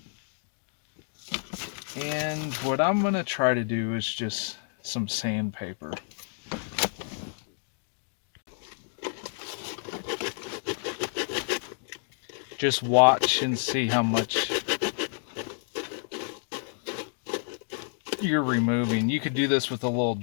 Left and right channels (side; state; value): right; silent; digital silence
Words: And what I'm gonna try to do is just some sandpaper. Just watch and see how much you're removing. You could do this with a little